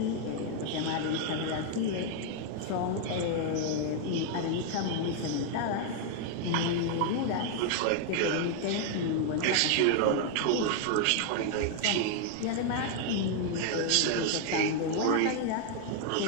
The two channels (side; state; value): both; different; correlation 0.00